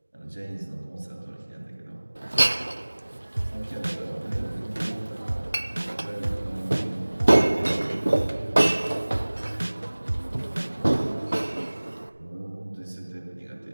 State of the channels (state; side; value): inverted; both; correlation -1.00